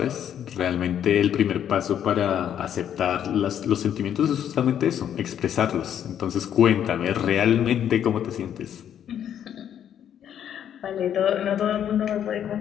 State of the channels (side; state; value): right; quieter; 9.6 dB